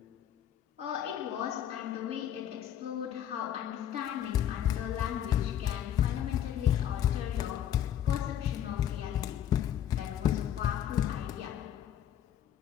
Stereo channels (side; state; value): right; quieter; 10.4 dB